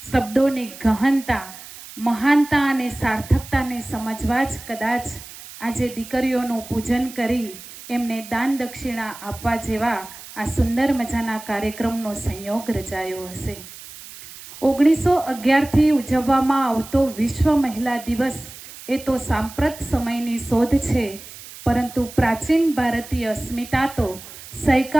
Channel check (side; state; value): right; noise; hiss, 16 dB below the sound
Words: ગહનતા, મહાનતા અને સાર્થકતાને સમજવા જ કદાચ આજે દીકરીઓનું પૂજન કરી એમને દાન દક્ષિણા આપવા જેવા આ સુંદર મજાના કાર્યક્રમનો સંયોગ રચાયો હશે। 1911થી ઉજવવામાં આવતો વિશ્વ મહિલા દિવસ એ તો સાંપ્રત સમયની શોધ છે, પરંતુ પ્રાચીન ભારતીય અસ્મિતા તો